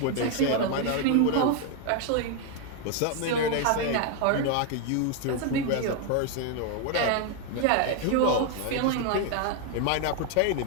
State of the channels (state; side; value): different; both; correlation 0.01